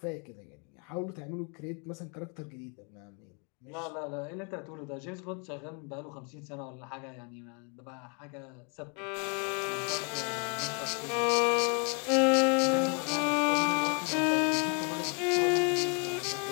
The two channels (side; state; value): right; quieter; 36.8 dB